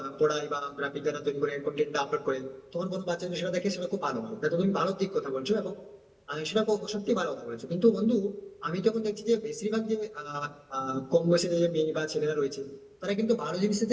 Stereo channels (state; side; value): identical; both; correlation 1.00